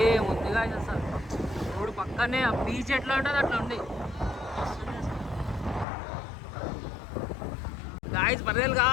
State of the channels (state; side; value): drops out; right; at 5.9 s